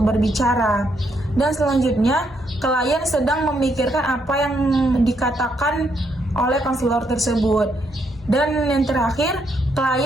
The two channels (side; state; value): both; normal; correlation 0.75